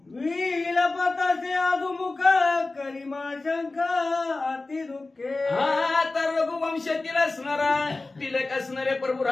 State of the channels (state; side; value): quieter; right; 3.3 dB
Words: विलपतासे अधुमुख करिमा शंख अति दुःखे. हा तर रघुवंशातील असणारा तिलक असणारे प्रभू